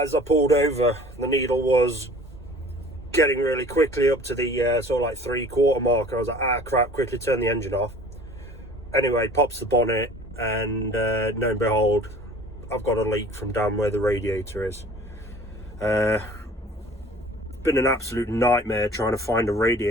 I pulled over, the needle was getting really quickly up to the sort of like 3/4 mark, and I was like, ah crap, quickly turn the engine off. Anyway, pops the bonnet, and lo and behold, I've got a leak from down where the radiator is. Been an absolute nightmare trying to find a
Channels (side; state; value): both; normal; correlation 0.47